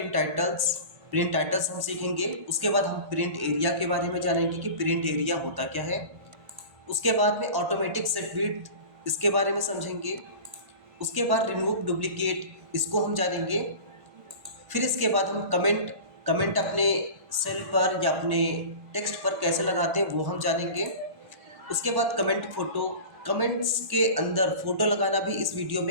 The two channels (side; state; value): left; late; 1.1 ms